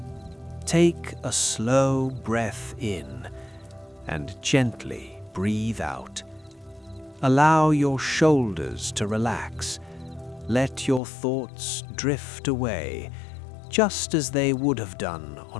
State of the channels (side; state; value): right; drops out; at 11.0 s